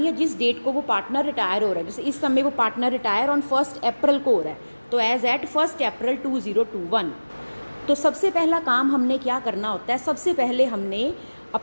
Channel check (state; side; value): inverted; both; correlation -1.00